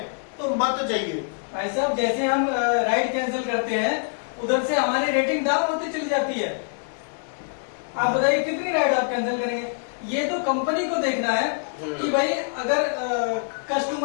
तो मत जाइए। भाई साहब जैसे हम राइड कैंसिल करते हैं, उधर से हमारी रेटिंग डाउन होती चली जाती है। आप बताइए कितनी राइड आप कैंसिल करेंगे? ये तो कंपनी को देखना है कि भाई अगर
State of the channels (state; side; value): silent; right; digital silence